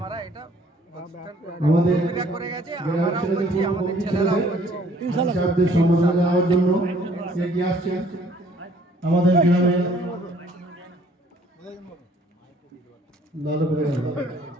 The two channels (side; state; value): both; normal; correlation 0.59